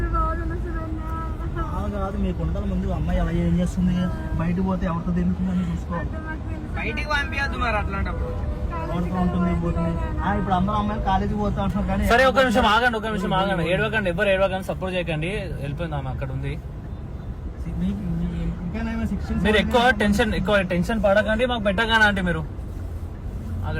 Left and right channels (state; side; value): identical; both; correlation 1.00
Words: కాదు, మీకు ఉండాల ముందు అమ్మాయి అలా ఏం చేస్తుంది, బయటకు పోతే ఎవరితో తిరుగుతుందని చూసుకోవాలి. బయటికి పంపించద్దు మరి అట్లాంటప్పుడు. ఎవరితో ఉంటుంది పోతుంది. ఇప్పుడు అందరూ అమ్మాయిలు కాలేజీకి పోతా అంటున్నారు కానీ. సరే ఒక నిమిషం ఆగండి, ఏడవకండి, ఎవరు ఏడవకండి, సపోర్ట్ చేయకండి, వెళ్ళిపోయింది ఆమె అక్కడ ఉంది. మీరు ఎక్కువ టెన్షన్ పడకండి, మాకు పెట్టగానే అంటే మీరు